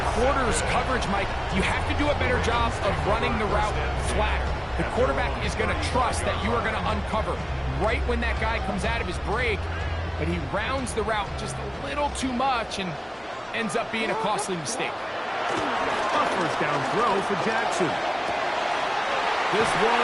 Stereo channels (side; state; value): both; identical; correlation 1.00